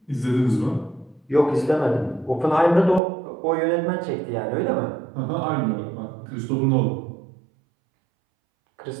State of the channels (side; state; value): left; drops out; at 3.0 s